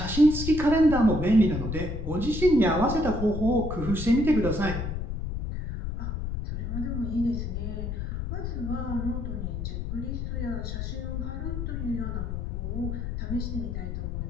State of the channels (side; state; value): left; noise; rumble, 4 dB below the sound